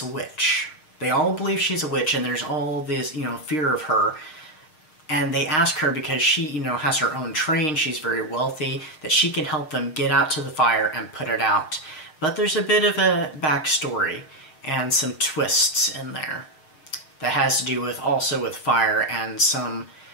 a witch. They all believe she's a witch, and there's all this, you know, fear of her. And they ask her, because she, you know, has her own train, she's very wealthy, that she can help them get out to the fire and put it out. But there's a bit of a backstory and some twists in there that has to do with also with fire and some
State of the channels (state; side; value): late; right; 6.5 ms